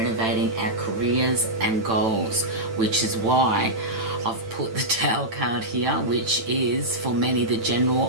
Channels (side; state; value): left; late; 9.0 ms